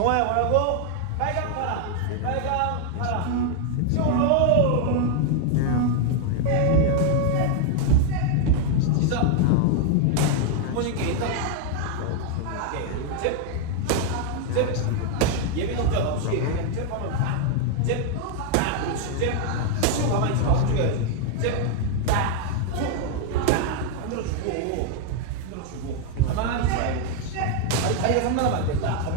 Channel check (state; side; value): different; both; correlation 0.01